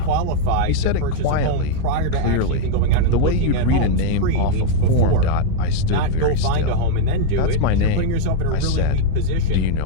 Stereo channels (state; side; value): different; both; correlation 0.00